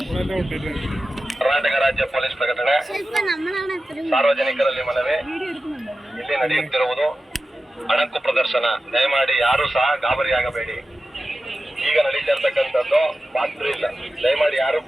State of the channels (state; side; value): normal; both; correlation 0.93